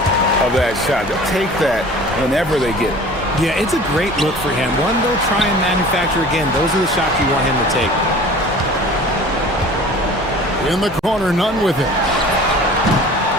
of that shot. They'll take that whenever they get it. Yeah, it's a great look for him. One they'll try and manufacture again. Those are the shots you want him to take. In the corner, none with it.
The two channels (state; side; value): normal; both; correlation 0.44